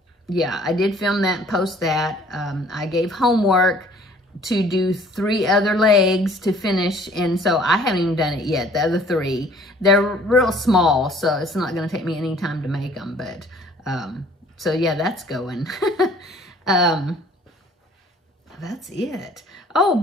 yeah, I did film that and post that. I gave homework to do 3 other legs to finish. And so I haven't even done it yet, the other 3. They're real small, so it's not going to take me any time to make them. But, so yeah, that's going. That's it. Oh,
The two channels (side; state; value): both; normal; correlation 0.55